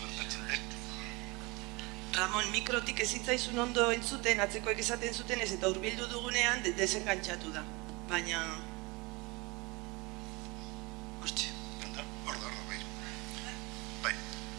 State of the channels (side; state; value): left; quieter; 25.2 dB